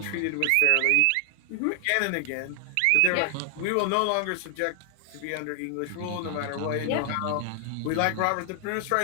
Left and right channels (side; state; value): both; different; correlation 0.00